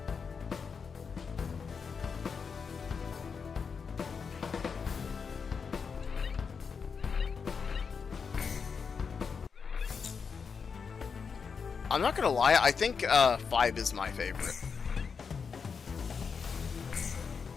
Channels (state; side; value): quieter; right; 5.8 dB